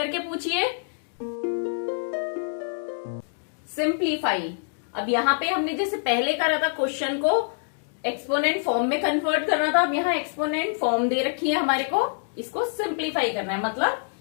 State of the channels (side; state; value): right; silent; digital silence